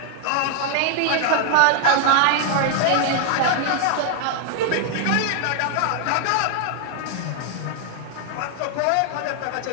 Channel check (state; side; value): different; both; correlation 0.00